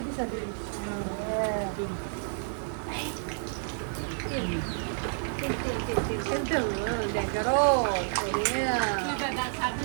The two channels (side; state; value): left; silent; digital silence